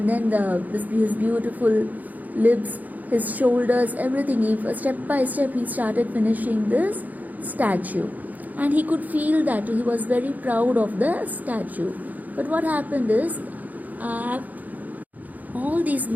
then his beautiful lips, his shoulders, everything. Step by step he started finishing this statue, and he could feel that he was very proud of the statue. But what happened is, all these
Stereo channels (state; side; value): late; left; 0.080 ms